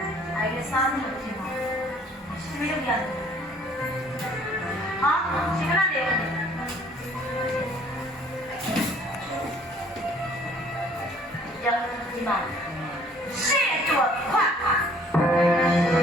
အဲ့ဒီစားလို့ဖြစ်မှာရှင်မလုပ်ရတယ်ဟာရှင်ကလည်းရဒီမှာရှေ့တော့ခွတ်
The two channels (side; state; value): both; normal; correlation 0.57